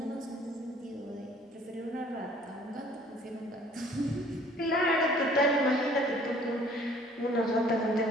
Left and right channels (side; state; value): both; normal; correlation 0.55